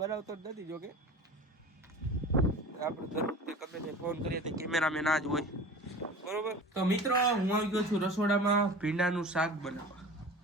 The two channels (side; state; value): both; normal; correlation 0.38